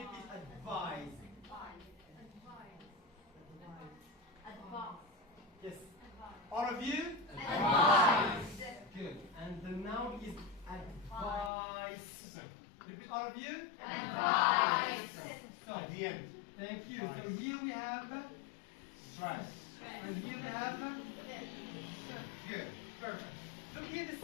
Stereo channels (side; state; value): right; drops out; at 11.5 s